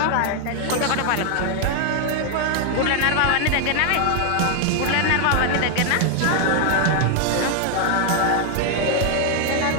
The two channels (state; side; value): different; both; correlation 0.00